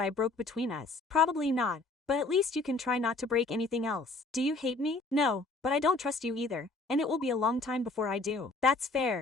I broke between us. Probably not, but at least you can try not to break anything else. Do you hate me? No, but I don't trust you either. And it will be a long time before I do. That's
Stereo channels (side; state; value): right; quieter; 3.4 dB